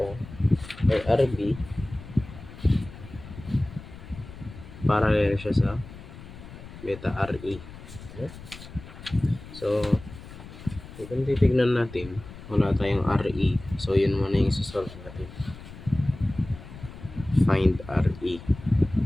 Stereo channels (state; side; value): noise; left; rumble, 15 dB below the sound